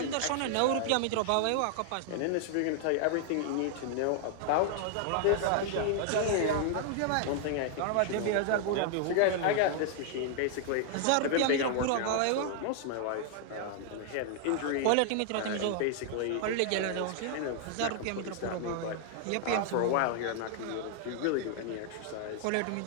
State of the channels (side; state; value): both; different; correlation 0.00